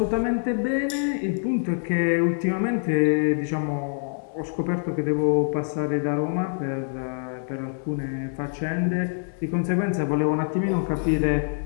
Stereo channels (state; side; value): silent; right; digital silence